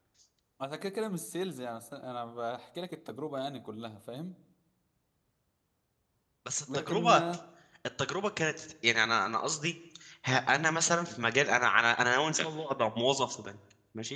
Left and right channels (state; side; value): identical; both; correlation 1.00